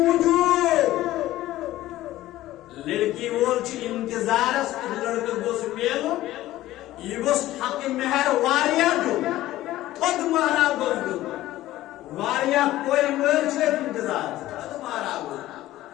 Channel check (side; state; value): right; quieter; 15.4 dB